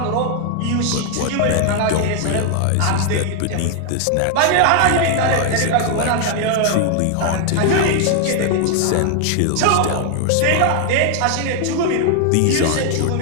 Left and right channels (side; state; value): both; different; correlation 0.00